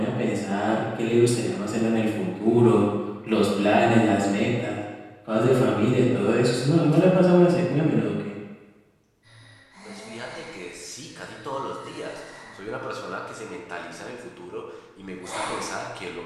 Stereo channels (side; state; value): both; identical; correlation 1.00